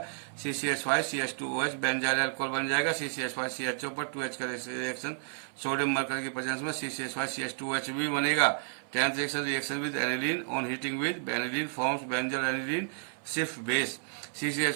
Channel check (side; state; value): left; silent; 57 dB below the other